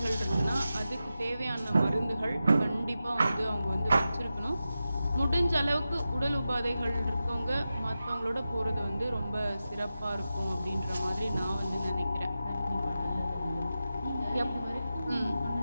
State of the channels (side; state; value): both; inverted; correlation -0.92